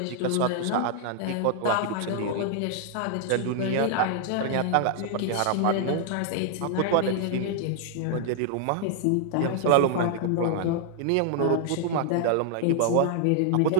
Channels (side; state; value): both; different; correlation -0.01